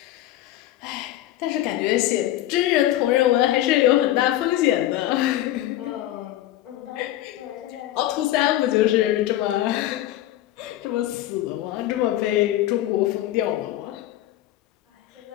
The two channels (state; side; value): quieter; right; 14.0 dB